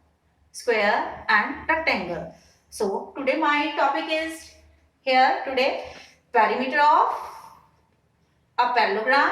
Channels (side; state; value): both; identical; correlation 1.00